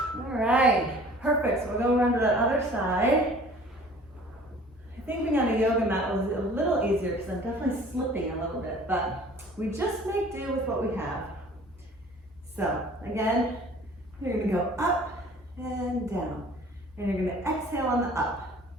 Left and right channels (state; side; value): normal; both; correlation 0.49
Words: All right, perfect. So we're going around to that other side. I think being on a yoga mat was a little easier because I'm definitely slipping a little bit, but we just make do with what we have. So again, you're gonna go up and down, and you're gonna exhale on the up.